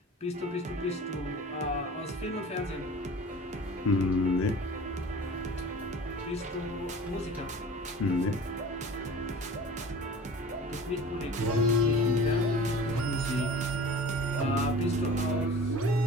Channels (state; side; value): normal; both; correlation 0.41